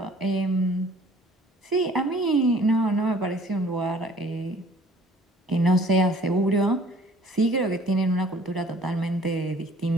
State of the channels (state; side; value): normal; both; correlation 0.54